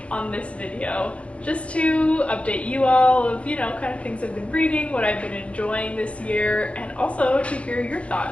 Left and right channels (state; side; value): late; right; 0.062 ms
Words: on this video just to update you all of, kind of things I've been reading, what I've been enjoying this year, and also to hear your